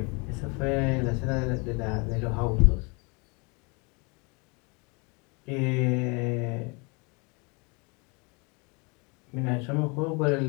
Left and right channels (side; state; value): right; quieter; 30.7 dB